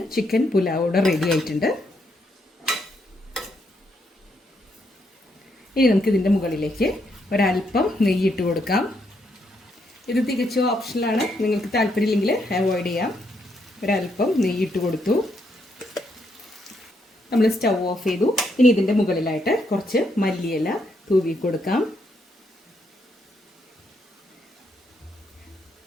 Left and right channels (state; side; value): normal; both; correlation 0.76